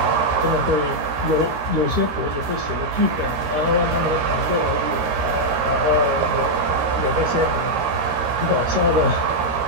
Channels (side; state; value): left; late; 13 ms